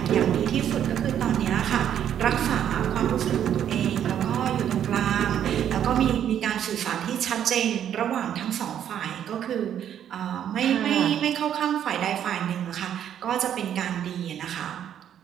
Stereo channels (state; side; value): quieter; left; 9.8 dB